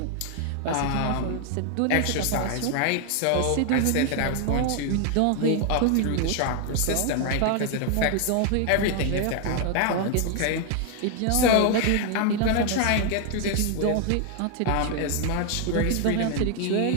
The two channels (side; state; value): both; different; correlation 0.00